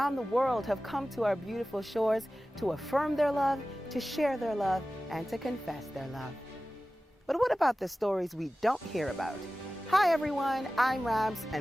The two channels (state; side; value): normal; both; correlation 0.96